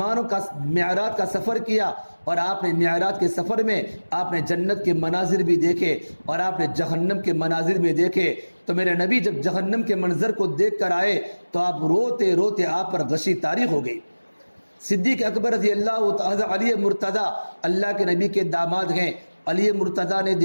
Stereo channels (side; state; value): both; inverted; correlation -1.00